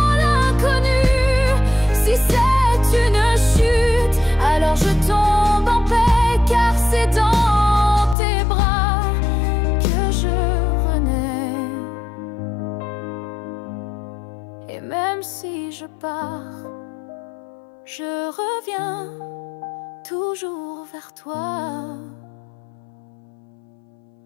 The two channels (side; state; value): right; drops out; at 8.2 s